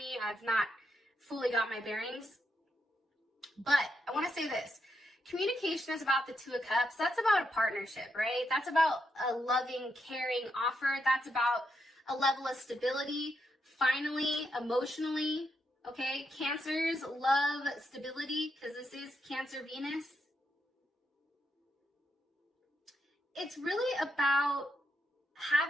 I've not fully got my bearings. But I want to say this. Communication is about the Two of Cups. That's about a partnership, right? That's about a loving, caring offer. That's about a level of stability, finally, emotionally, okay? Cancers love stability because this is Cancer Venus. It's really about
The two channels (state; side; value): normal; both; correlation 0.82